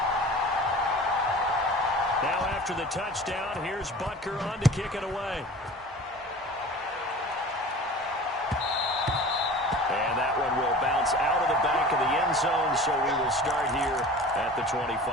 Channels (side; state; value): both; normal; correlation 0.40